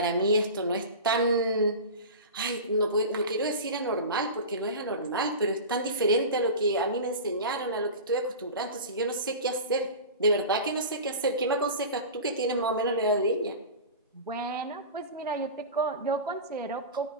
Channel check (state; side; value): inverted; both; correlation -0.30